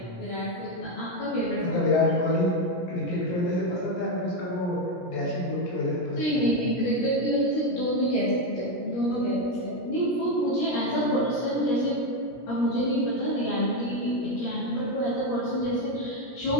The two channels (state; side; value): late; right; 17 ms